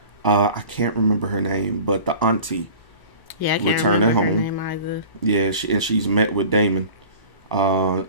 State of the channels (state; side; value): late; right; 1.0 ms